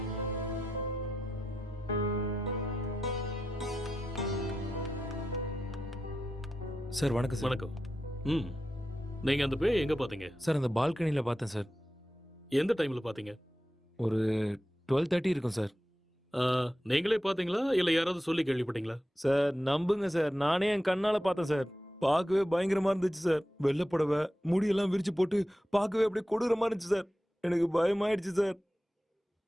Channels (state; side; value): normal; both; correlation 0.90